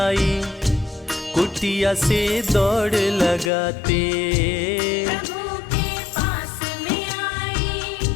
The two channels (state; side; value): drops out; right; at 3.5 s